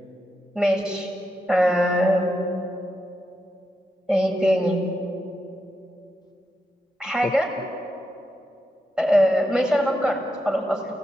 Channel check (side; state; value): both; normal; correlation 0.85